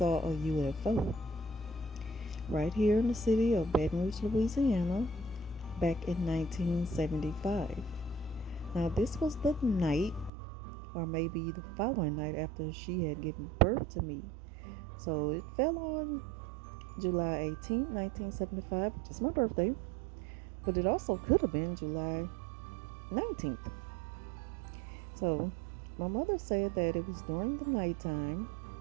a UFO right here in the city of Baton Rouge, Louisiana, back in 1975. Now, this was the night, or maybe the following night after she had given birth to me. So it fell on July 18th, 1975, which is my birthday, but it also could have been July 19th. So my mother said that it was during the nighttime.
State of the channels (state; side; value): drops out; left; at 10.3 s